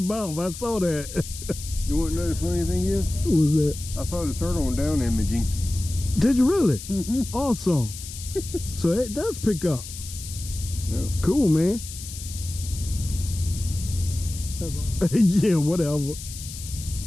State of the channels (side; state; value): left; noise; hiss, 11 dB below the sound